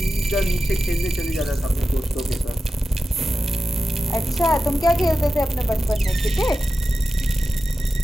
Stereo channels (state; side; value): normal; both; correlation 0.93